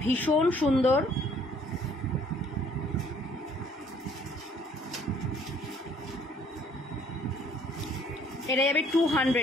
ভীষণ সুন্দর। এটা যাবে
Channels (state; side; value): normal; both; correlation 0.60